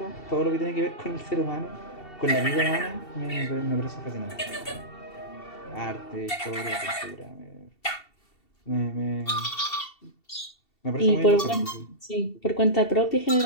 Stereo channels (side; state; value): right; late; 2.7 ms